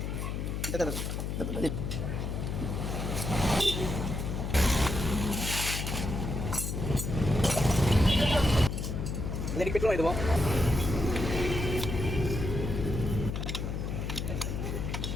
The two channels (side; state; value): left; noise; hum, 3 dB below the sound